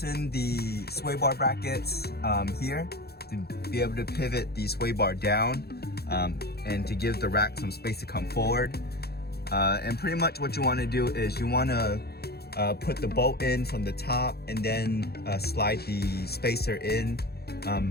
the sway bar brackets here to be able to pivot the sway bar down and to give the rack some space to come forward. And pretty much what you want to do is you want to put the bolt in from the top and then slide the spacer in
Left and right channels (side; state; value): right; late; 0.46 ms